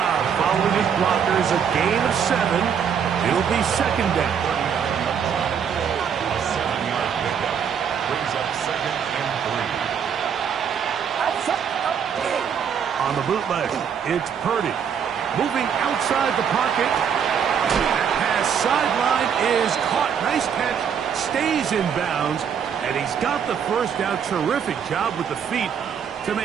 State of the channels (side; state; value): left; quieter; 7.6 dB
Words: following his blockers. A gain of 7. It'll be second down. A 7-yard pickup. Brings up 2nd and 3. On the bootleg, it's Purdy. Moving outside the pocket. That pass sideline is caught. Nice catch. Stays in bounds. And he's got the first down. Terrific job with the feet to